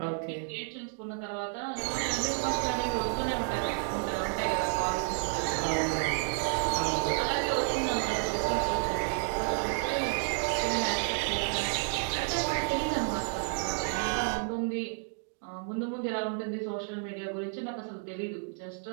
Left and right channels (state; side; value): silent; left; 57 dB below the other